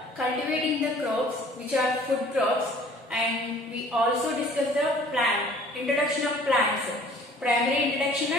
cultivating the crops which are food crops, and we also discuss the introduction of plants, primary introduction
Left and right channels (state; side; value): normal; both; correlation 0.52